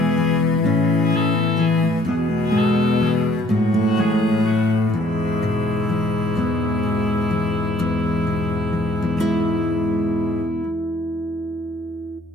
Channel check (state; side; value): normal; both; correlation 0.61